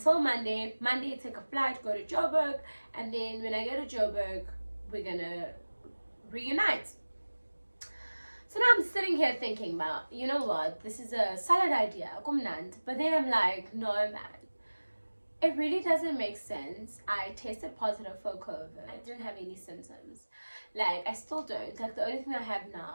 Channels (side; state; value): both; inverted; correlation -1.00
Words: Monday. Monday, take a flight, go to Joburg, and then when I go to Joburg, we're gonna reunite. So now I'm sitting here thinking about, you know what, this is a solid idea, but then I'm like, no man, it really doesn't make sense. I tested positive for COVID. I didn't have any symptoms. Like, I still don't. Like, the only thing I have